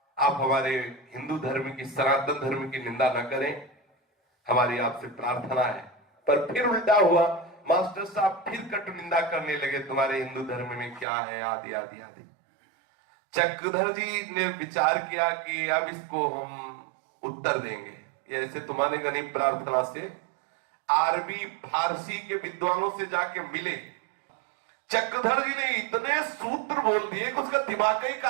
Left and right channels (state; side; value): drops out; left; at 11.1 s